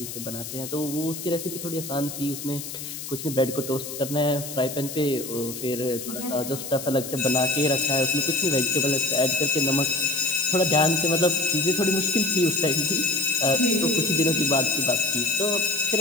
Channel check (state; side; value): noise; left; hiss, 9 dB below the sound